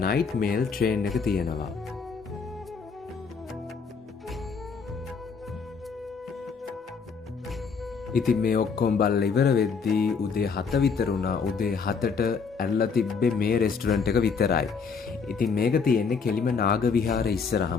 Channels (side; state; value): right; quieter; 5.5 dB